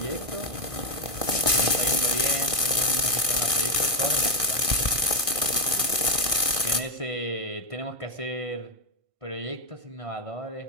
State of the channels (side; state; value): left; late; 1.5 ms